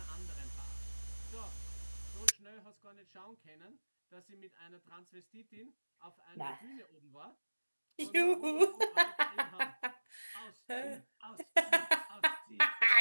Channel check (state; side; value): inverted; both; correlation -1.00